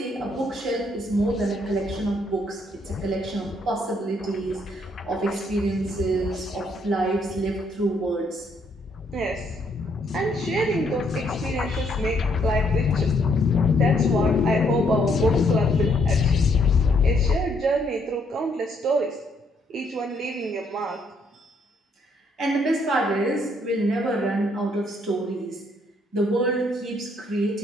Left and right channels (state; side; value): normal; both; correlation 0.70